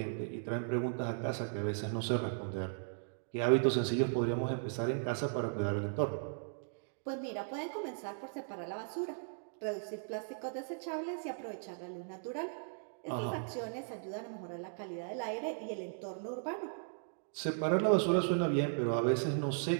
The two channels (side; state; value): left; silent; digital silence